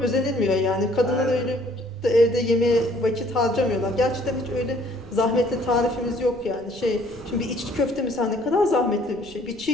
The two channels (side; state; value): right; noise; rumble, 21 dB below the sound